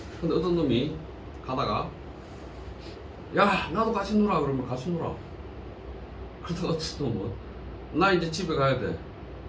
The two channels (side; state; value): both; identical; correlation 1.00